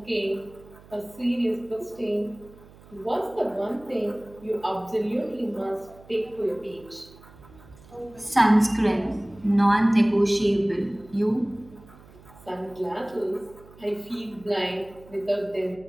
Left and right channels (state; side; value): noise; right; hum, 23 dB below the sound